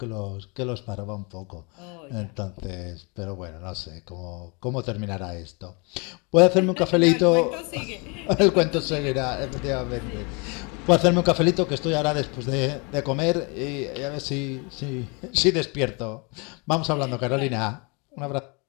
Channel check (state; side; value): quieter; right; 31.3 dB